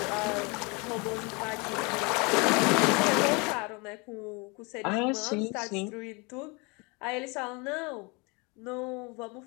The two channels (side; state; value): right; quieter; 28.9 dB